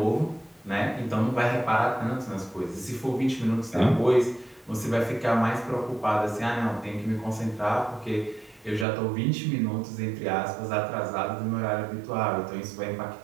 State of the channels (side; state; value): left; drops out; at 8.8 s